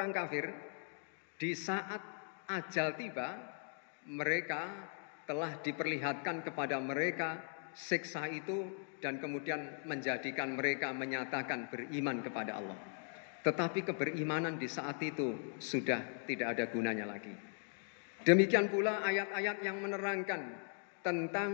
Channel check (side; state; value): right; silent; 52 dB below the other